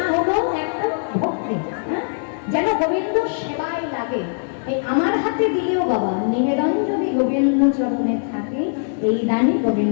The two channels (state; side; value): silent; right; digital silence